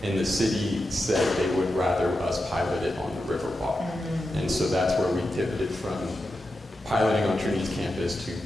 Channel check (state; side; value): normal; both; correlation 0.89